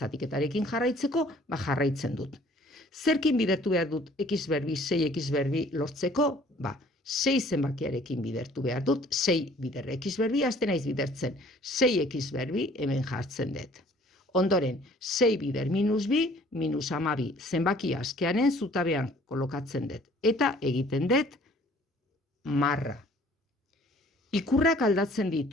jarraitzeko, jarraitzen dut. Zerkin bidertu behar dut x berbi, 6x berbi lortzeko? 6 zenbakiarekin bidertu behar dut, 6 bider x berbi, azten naiz bidertzen. 6x berbi hemen jartzen dut. Ondoren, 6 bider minus bi, minus 12 zenbaki askearen zutabean kolokatzen dut. Eta egiten dut marra. Ikurrak aldatzen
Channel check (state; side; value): normal; both; correlation 0.55